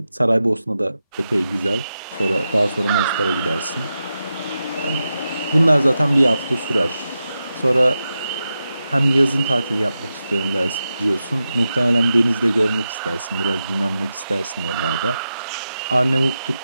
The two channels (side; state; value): both; inverted; correlation -0.90